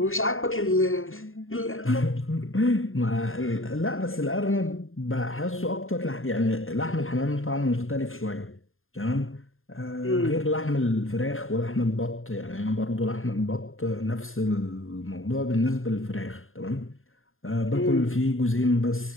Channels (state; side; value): late; right; 0.60 ms